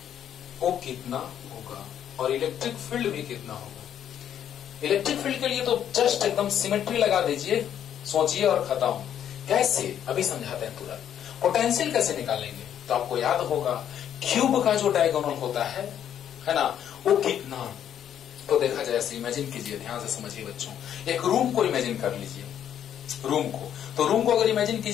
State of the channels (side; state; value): right; quieter; 9.8 dB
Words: वो कितना होगा और इलेक्ट्रिक फील्ड भी कितना होगा। इलेक्ट्रिक फील्ड के लिए तो जस्ट एकदम सिमेट्री लगा दीजिए, सोचिए और खत्म। कैसे? अभी समझाते हैं तुरंत। पोटेंशियल कैसे निकालेंगे? तो आपको याद होगा क्यूब का जो डायगोनल होता है ना, वो कितना। तो देखा जाए, ऐसे इमेजिन कीजिए, ध्यान से समझिए बच्चों। एक रूम को इमेजिन कर लीजिए, रूम को। तो रूम को अगर इमेजिन